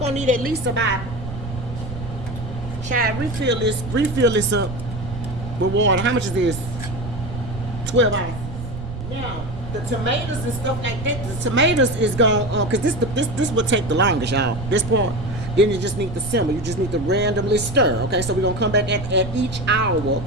need at least about, child, refill this up with water. How much is this? 12 ounces. Now, the tomatoes and stuff like that, the tomatoes is gonna, cause this will take the longest, y'all. This part. Then you just need to simmer. You just need to randomly stir. Okay, so we're gonna come back at each hour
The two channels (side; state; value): right; noise; rumble, 9 dB below the sound